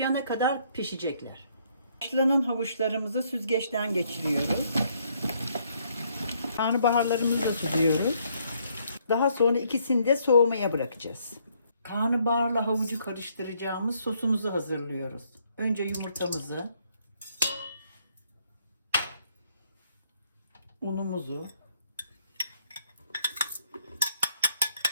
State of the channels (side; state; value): both; inverted; correlation -0.70